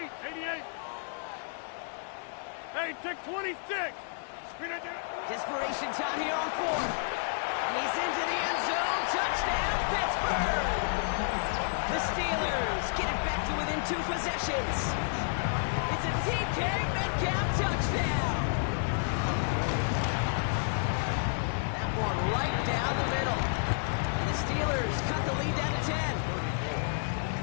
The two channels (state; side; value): silent; right; 57 dB below the other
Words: Hey, take 26. Desperation time here on 4th. And he's into the end zone. Touchdown, Pittsburgh! The Steelers get it back to within 2 possessions. It's a DK Metcalf touchdown. That one right down the middle. And the Steelers cut the lead down to 10.